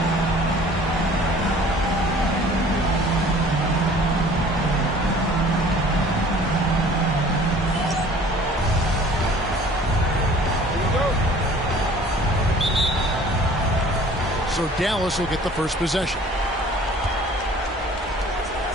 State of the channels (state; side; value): normal; both; correlation 0.50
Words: So Dallas will get the first possession.